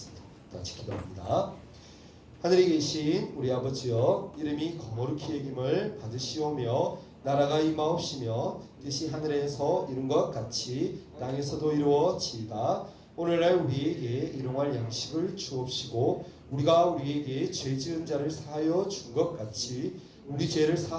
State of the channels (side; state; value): both; identical; correlation 1.00